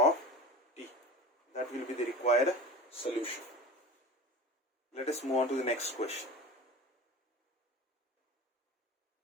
t. That will be the required solution. Let us move on to the next question.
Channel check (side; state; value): both; normal; correlation 0.34